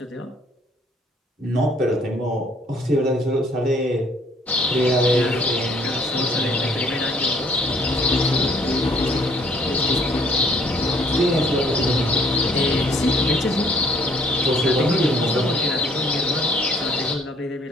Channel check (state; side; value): normal; both; correlation 0.62